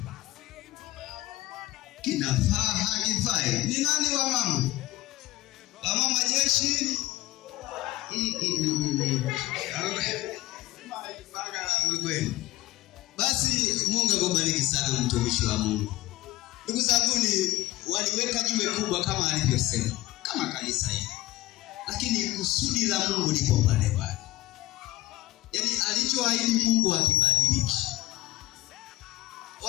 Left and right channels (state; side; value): quieter; right; 17.4 dB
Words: kinafaa hakifai. Ni nani wa mama? Wa mama jeshi. Basi Mungu akubariki sana mtumishi wa Mungu. Ndugu zangu, waliweka jiwe kubwa kama alivyosema, kama kanisa hili. Lakini kusudi la Mungu lipo pale pale. Yaani alichoahidi Mungu hakibadiliki.